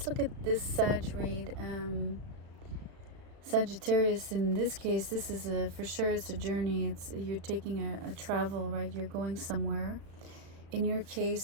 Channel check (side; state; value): left; late; 36 ms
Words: look at this Sag read. Sagittarius, in this case, this is for sure it's a journey. You're taking a travel, right? You're going somewhere. In your